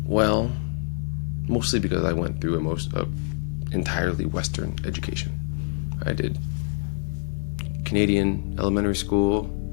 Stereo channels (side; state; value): right; silent; digital silence